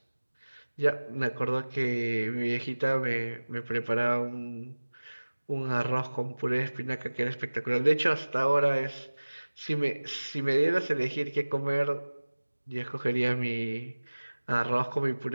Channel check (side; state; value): both; inverted; correlation -1.00